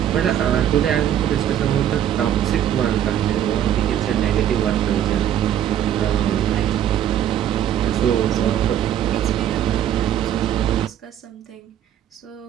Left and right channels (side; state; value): left; quieter; 10.5 dB